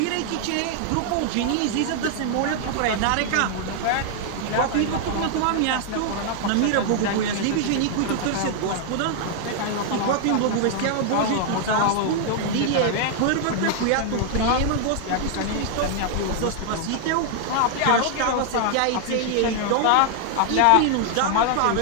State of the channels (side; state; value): both; different; correlation 0.00